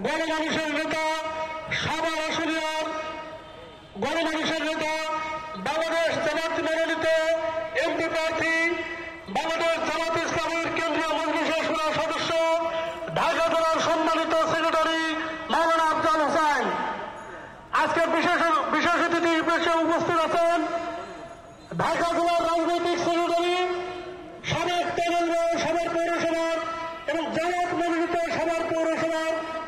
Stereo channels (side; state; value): both; identical; correlation 1.00